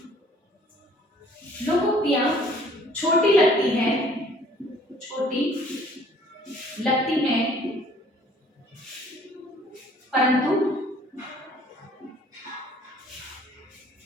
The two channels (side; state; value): both; normal; correlation 0.56